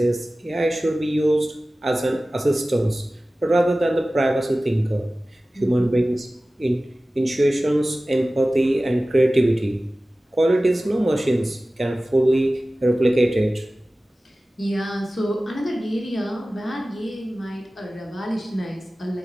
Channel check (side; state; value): both; normal; correlation 0.97